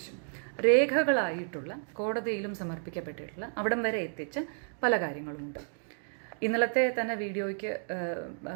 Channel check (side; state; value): left; silent; digital silence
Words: രേഖകളായിട്ടുള്ള കോടതിയിലും സമർപ്പിക്കപ്പെട്ടിട്ടുള്ള അവിടം വരെ എത്തിച്ച പല കാര്യങ്ങളുമുണ്ട്. ഇന്നലത്തെ തന്നെ വീഡിയോയ്ക്ക്